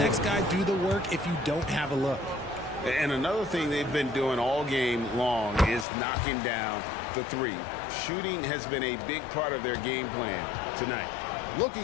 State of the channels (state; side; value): drops out; right; at 5.9 s